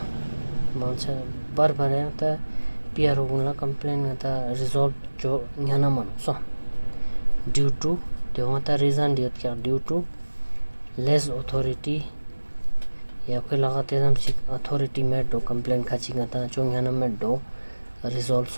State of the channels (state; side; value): inverted; both; correlation -1.00